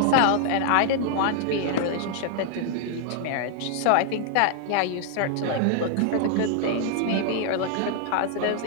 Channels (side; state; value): both; different; correlation 0.00